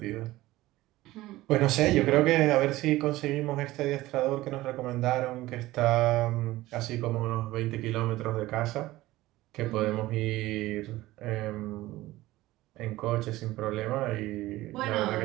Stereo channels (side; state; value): left; quieter; 17.4 dB